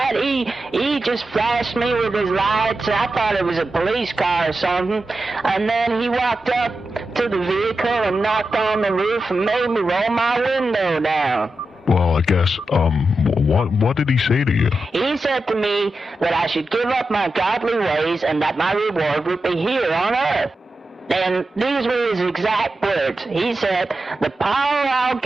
He just flashed me with his lights, and I thought it was a police car or something. And then he walked up to the vehicle and knocked on the roof and made me roll my window down. Well, I guess, what did he say to you? He said to me that I should give up my godly ways and that my reward would be here on earth. And these were his exact words. He said, "The power I'll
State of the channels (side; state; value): both; normal; correlation 0.90